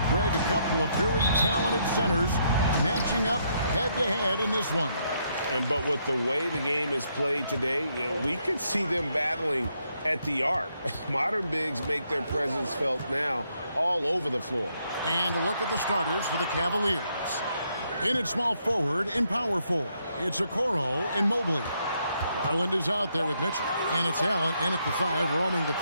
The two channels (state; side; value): inverted; both; correlation -0.75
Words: Greg, a couple of very talented centers matching up head-to-head in this one. But with the way the game is played today, we could see them battling at the arc. Modern bigs make their presence felt now all over the floor. And a look at the starters for the Cavaliers. In at small forward and power forward, it's Okoro and Mobley. Garland is out there with Mitchell. And it's Allen in at the 5, roaming the